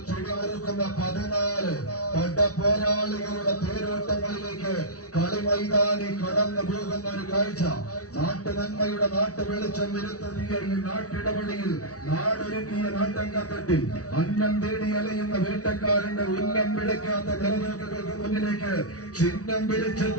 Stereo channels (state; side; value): late; right; 0.67 ms